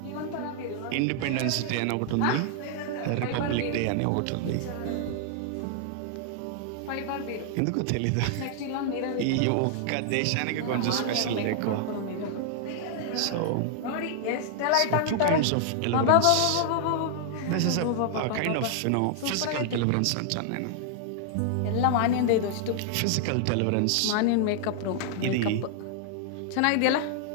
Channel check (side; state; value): both; different; correlation -0.01